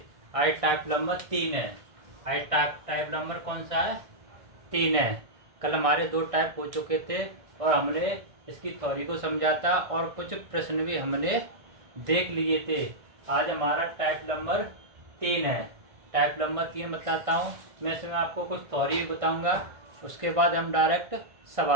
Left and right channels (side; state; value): left; late; 1.6 ms